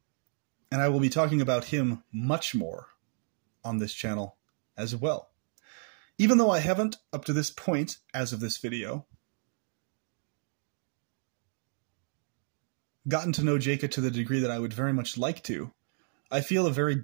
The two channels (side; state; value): left; silent; digital silence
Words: And I will be talking about him much more on this channel as well. Even though I haven't, up to this point, as of this video, gotten to know Jacob to the degree that I would very much like to, I feel a very